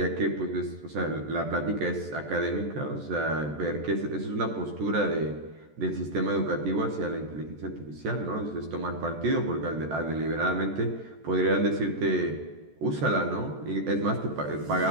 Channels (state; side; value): late; left; 14 ms